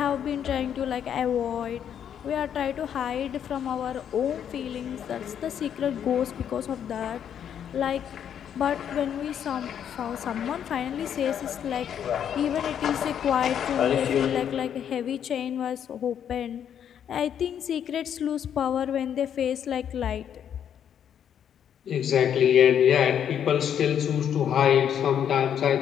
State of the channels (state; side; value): quieter; right; 9.0 dB